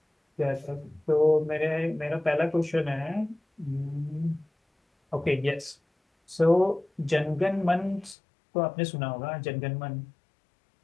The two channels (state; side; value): drops out; right; at 8.2 s